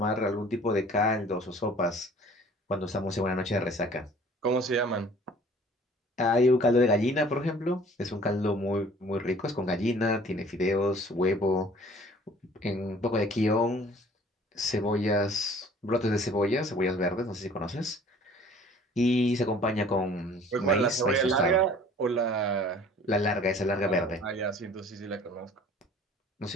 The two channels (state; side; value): normal; both; correlation 0.51